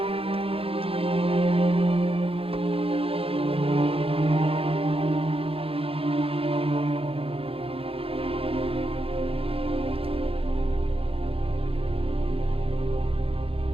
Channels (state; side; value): late; left; 0.27 ms